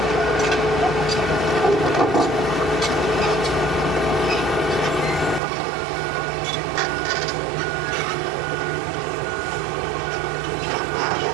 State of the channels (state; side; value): drops out; left; at 5.4 s